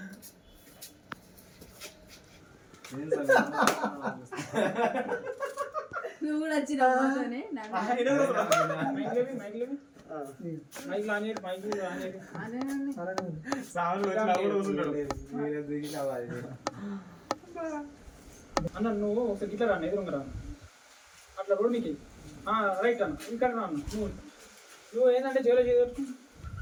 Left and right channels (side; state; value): both; identical; correlation 1.00